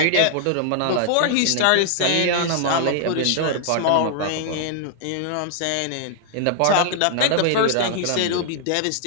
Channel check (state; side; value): different; both; correlation -0.01